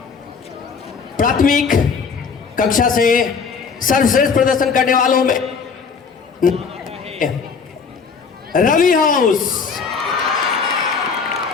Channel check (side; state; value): right; quieter; 5.6 dB